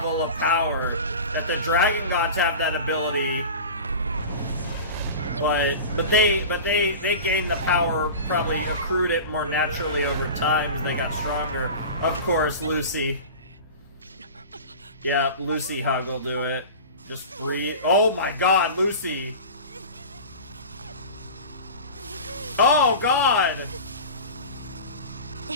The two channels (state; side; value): inverted; both; correlation -0.34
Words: of power. That the dragon gods have that ability. But they gained the power, probably accrued it more naturally over time as they got stronger. Of course, Lucy. Yeah, Lucy hug will do it. Just breathe. Oh my God, Lucy. Oh God.